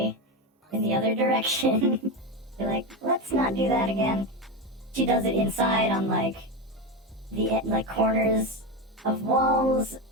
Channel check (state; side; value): normal; both; correlation 0.15